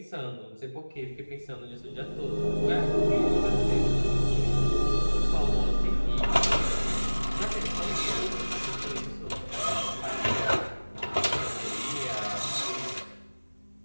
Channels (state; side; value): inverted; both; correlation -1.00